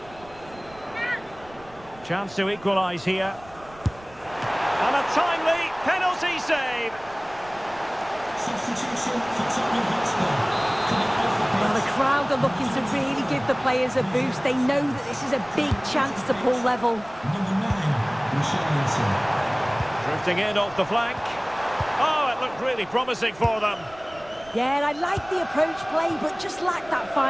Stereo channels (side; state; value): right; noise; rumble, 22 dB below the sound